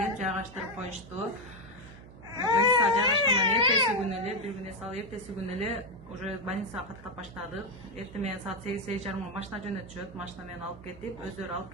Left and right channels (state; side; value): noise; right; hum, 18 dB below the sound